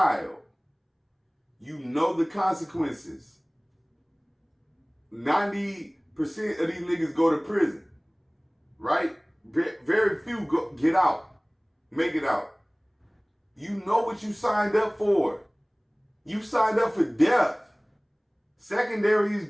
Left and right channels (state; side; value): identical; both; correlation 1.00